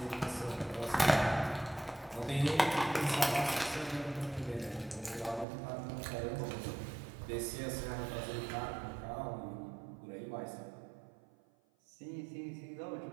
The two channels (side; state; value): left; drops out; at 5.5 s